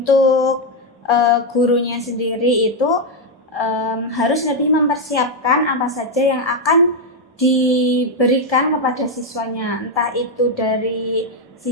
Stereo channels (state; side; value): normal; both; correlation 0.03